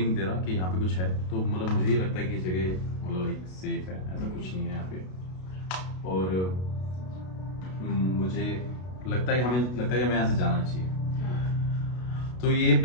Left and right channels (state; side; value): late; right; 32 ms